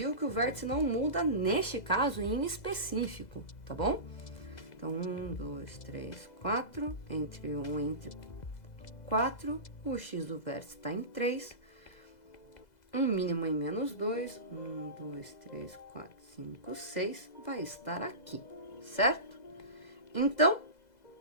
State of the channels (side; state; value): right; late; 2.0 ms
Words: que o vértice não muda neste caso em específico, tá bom? Então, 1, 2, 3, 4, entre 1 e entre 4, o x do vértice está em 3, um mínimo em menos 2, 1, 2, 3, 4, 5, 6, vai estar aqui, certo? Então,